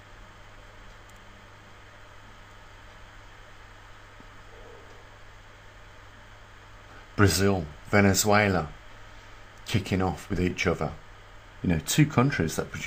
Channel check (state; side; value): identical; both; correlation 1.00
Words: Brazil, Venezuela, kicking off with each other. You know, two countries that